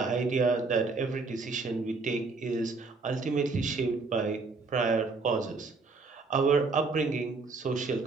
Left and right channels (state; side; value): quieter; left; 4.0 dB